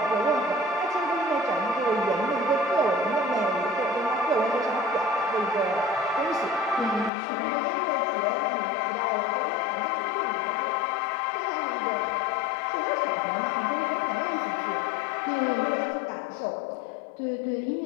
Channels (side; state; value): right; drops out; at 7.1 s